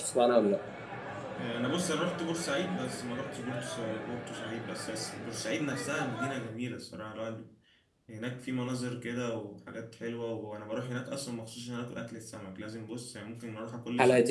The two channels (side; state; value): both; identical; correlation 1.00